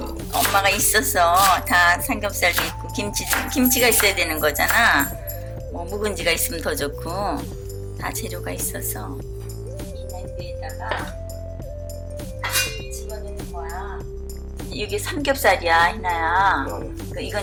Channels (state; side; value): identical; both; correlation 1.00